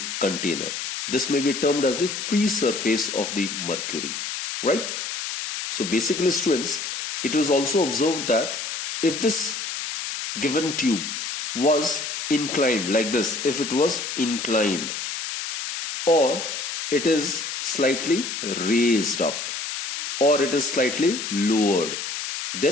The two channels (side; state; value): left; noise; hiss, 5 dB below the sound